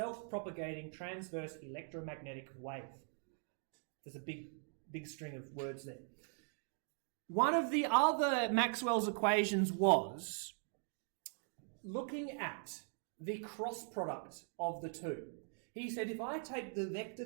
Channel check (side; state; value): left; silent; 50 dB below the other